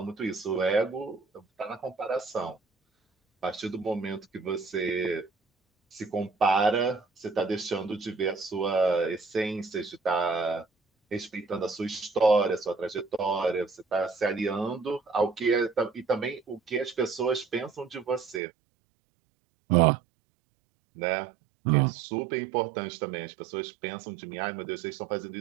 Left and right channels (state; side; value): drops out; left; at 18.4 s